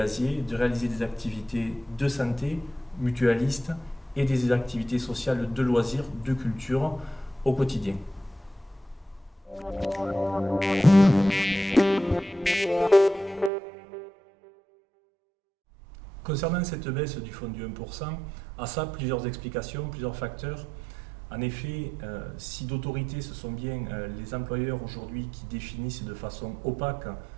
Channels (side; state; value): left; drops out; at 13.5 s